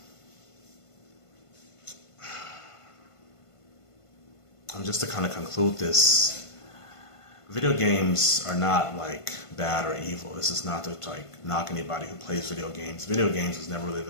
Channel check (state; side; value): late; right; 1.5 ms